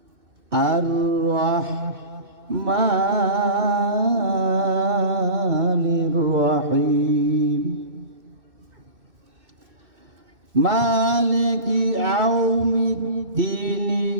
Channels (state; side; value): late; left; 2.6 ms